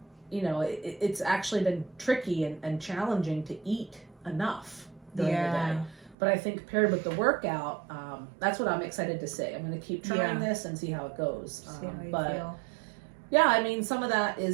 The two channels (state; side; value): drops out; left; at 6.2 s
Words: it's actually been tricky and challenging to eat enough during the day. But I think paired with the workout, that's what I'm excited to see. I'm going to keep trying this and see how it goes. See how you feel. Yeah, I mean, some of that